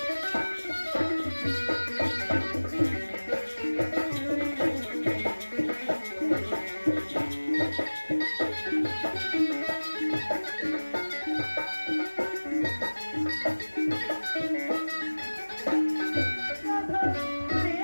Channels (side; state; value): both; inverted; correlation -1.00